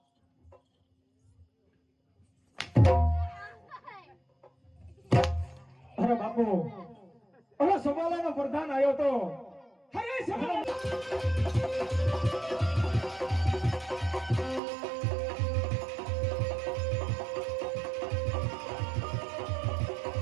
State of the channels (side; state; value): left; drops out; at 14.6 s